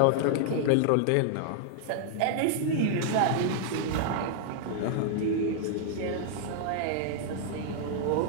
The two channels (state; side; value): different; both; correlation -0.01